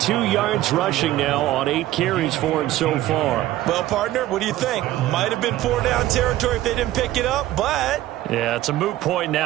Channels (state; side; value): quieter; left; 14.9 dB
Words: yards rushing now on 8 carries for him so far. Well, partner, what do you think? Might have been 4-down territory if they didn't pick it up, but... Yeah, it's a moot point